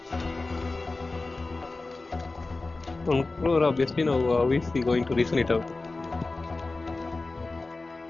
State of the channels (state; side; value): quieter; right; 3.4 dB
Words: Obviously now, how is he going to reason it out?